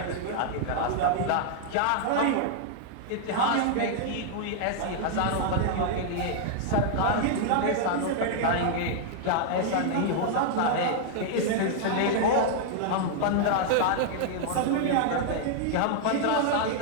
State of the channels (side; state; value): both; different; correlation -0.01